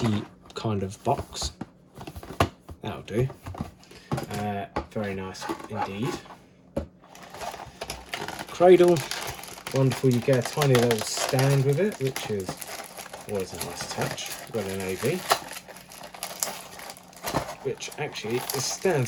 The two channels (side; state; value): both; identical; correlation 1.00